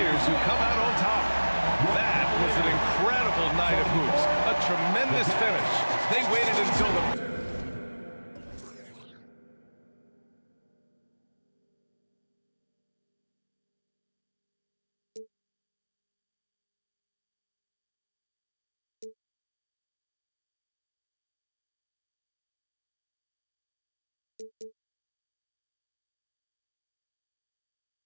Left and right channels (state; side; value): inverted; both; correlation -1.00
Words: who come out on top. That was an incredible night of hoops. A tremendous finish. They waited until the...